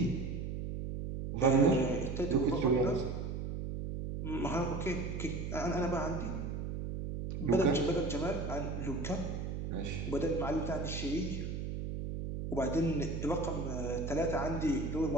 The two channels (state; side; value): noise; right; hum, 4 dB below the sound